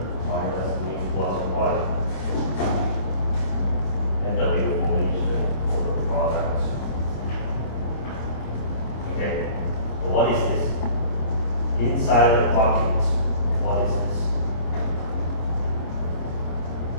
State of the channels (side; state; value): right; late; 26 ms